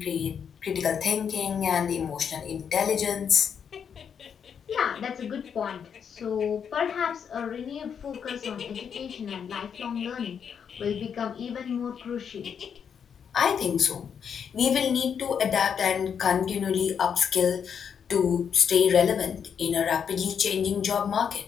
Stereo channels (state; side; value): quieter; right; 7.4 dB